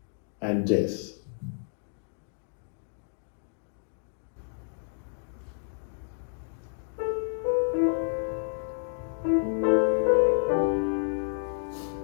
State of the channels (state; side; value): silent; right; digital silence